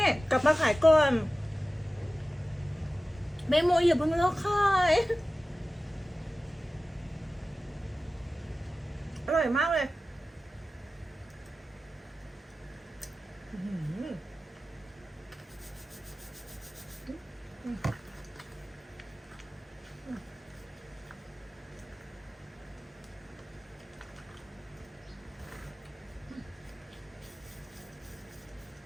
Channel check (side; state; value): both; normal; correlation 0.95